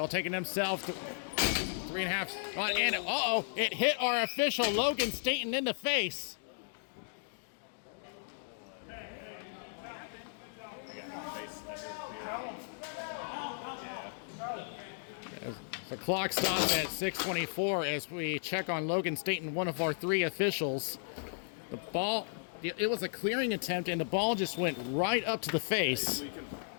take it himself. 3.5. And it hit our official Logan Staten in the face. The clock stops at 6:24 as we check on Logan Staten, one of our 3 officials. The ball, it was a clearing attempt, and the ball just went right up to the face.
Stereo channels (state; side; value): silent; right; digital silence